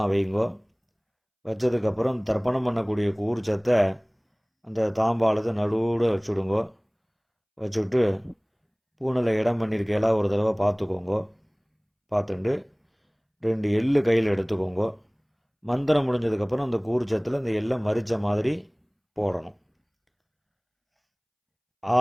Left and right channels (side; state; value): both; identical; correlation 1.00